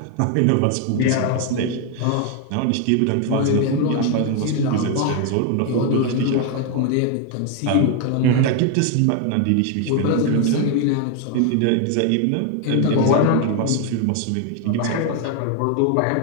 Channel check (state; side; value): different; both; correlation 0.01